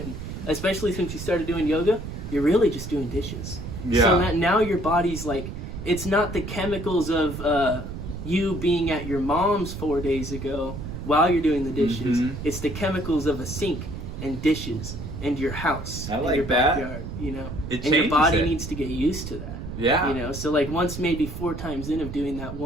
you started doing yoga, you're really just doing dishes. Yeah. So that now your body's like, it's not the chemicals of you being at your mom's 4 days ago while you're doing the dishes. Mhm. It's the chemicals of a sink and dishes and your house I and like your that. backyard, you know? It And your changes body it. needs to get used to that. Yeah. You know, so like once maybe 4 times in of doing that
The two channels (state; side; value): noise; right; rumble, 8 dB below the sound